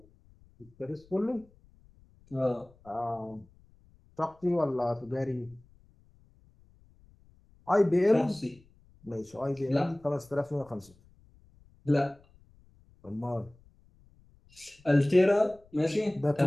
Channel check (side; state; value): left; noise; rumble, 29 dB below the sound